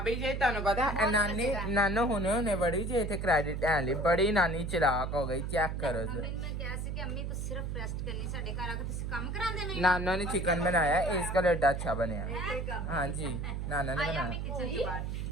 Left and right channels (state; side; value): noise; right; hum, 3 dB below the sound